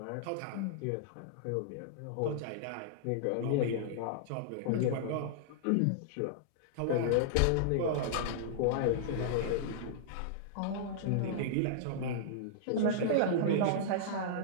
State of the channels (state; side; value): different; both; correlation -0.02